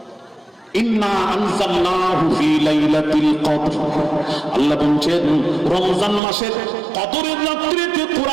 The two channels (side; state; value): left; drops out; at 6.2 s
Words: ইন্না আনজালনাহু ফি লাইলাতিল কদর। আল্লাহ বলেন রমজান মাসের কদরের রাত্রিতে